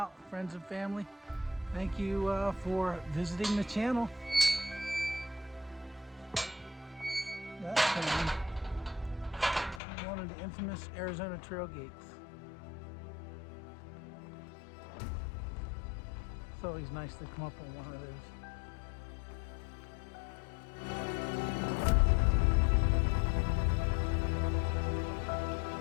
friends and family, thank you for visiting the channel. That's one of the infamous Arizona Trail gates. It's always nice to come up on one of those.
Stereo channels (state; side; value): drops out; right; at 9.8 s